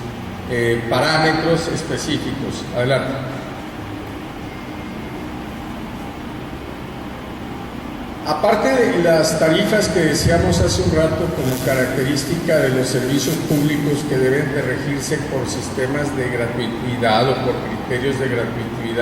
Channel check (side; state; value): both; identical; correlation 1.00